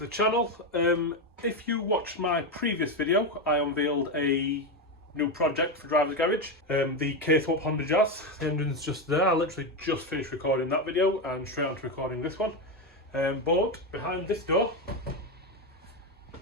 channel. If you watched my previous video, I unveiled a new project for Driver's Garage, the K-Swap Honda Jazz. The engine's just there. I literally just finished recording that video and straight on to recording this one. But behind this door,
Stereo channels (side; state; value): both; normal; correlation 0.11